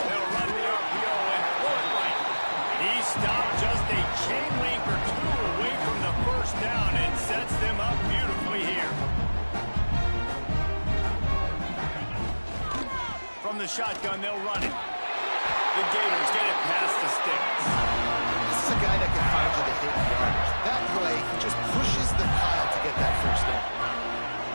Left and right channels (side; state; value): both; inverted; correlation -1.00